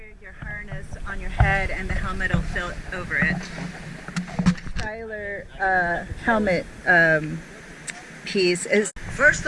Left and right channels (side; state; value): both; identical; correlation 1.00